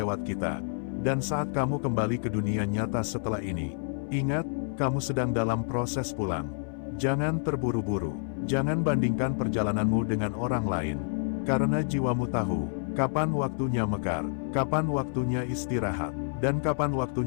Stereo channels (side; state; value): right; silent; 59 dB below the other